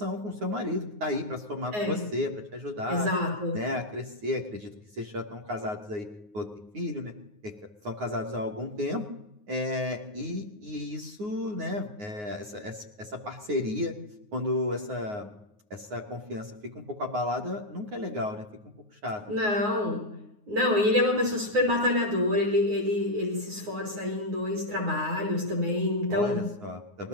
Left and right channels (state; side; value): late; left; 9.6 ms